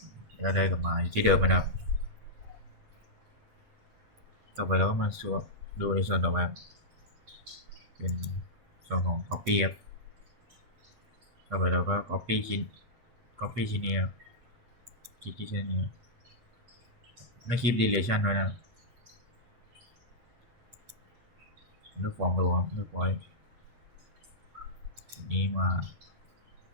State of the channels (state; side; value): late; left; 8.2 ms